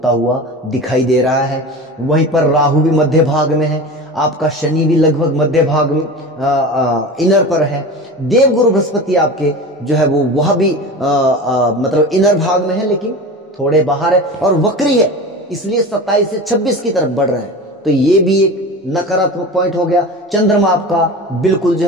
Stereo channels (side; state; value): both; normal; correlation 0.31